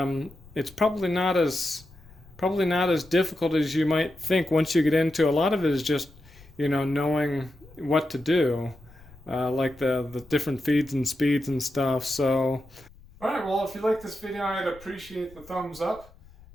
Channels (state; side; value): noise; left; rumble, 23 dB below the sound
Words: It's probably not as difficult as you might think once you get into. A lot of it is just knowing what to do, like the different feeds and speeds and stuff. So, all right. Well, if you like this video, I'd appreciate the thumbs up.